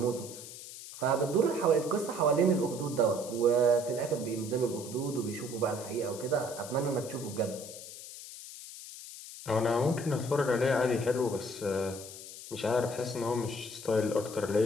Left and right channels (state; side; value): noise; left; hiss, 13 dB below the sound